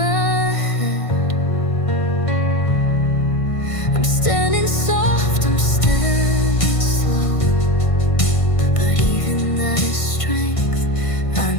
head. I'm standing soft, I'm standing slow, but even that is strength, I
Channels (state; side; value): late; right; 1.5 ms